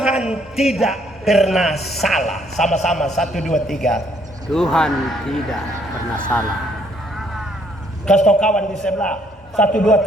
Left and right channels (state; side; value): normal; both; correlation 0.67